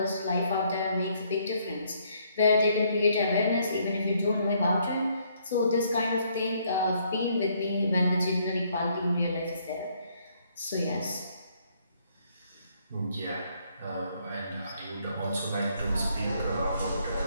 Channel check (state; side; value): inverted; both; correlation -0.68